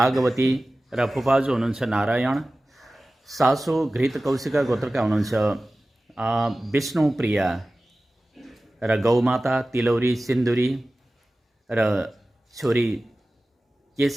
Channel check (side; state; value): both; normal; correlation 0.96